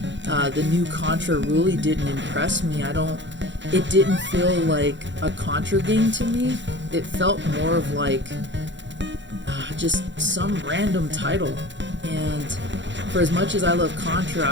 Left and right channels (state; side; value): late; left; 0.53 ms